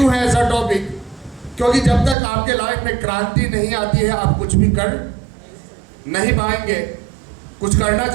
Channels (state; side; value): drops out; left; at 2.1 s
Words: है ऐसा टॉपिक? क्योंकि जब तक आपके लाइफ में क्रांति नहीं आती है आप कुछ भी कर नहीं पाएंगे। कुछ करना